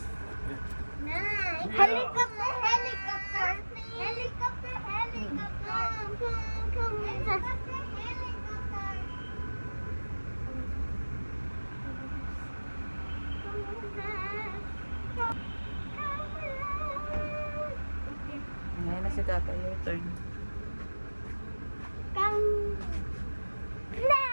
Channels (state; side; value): inverted; both; correlation -1.00